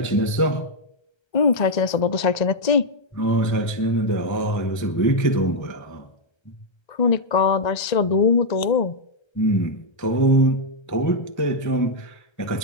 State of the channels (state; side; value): late; right; 1.3 ms